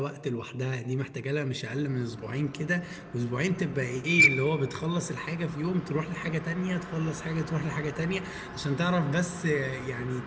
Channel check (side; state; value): both; identical; correlation 1.00